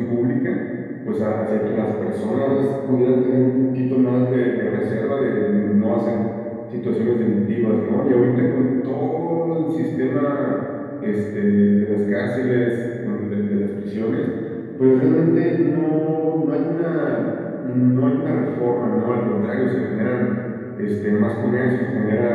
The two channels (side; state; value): both; identical; correlation 1.00